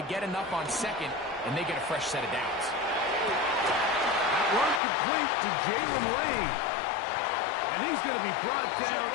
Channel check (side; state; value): right; drops out; at 4.8 s